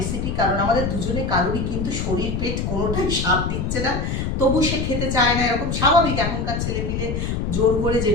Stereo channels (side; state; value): left; noise; rumble, 1 dB below the sound